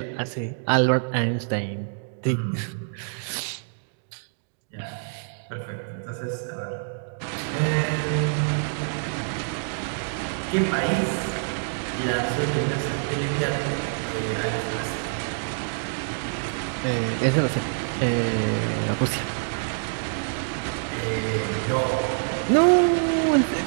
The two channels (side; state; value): left; silent; digital silence